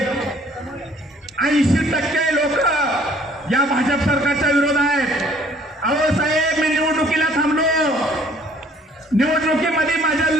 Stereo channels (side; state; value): both; normal; correlation 0.57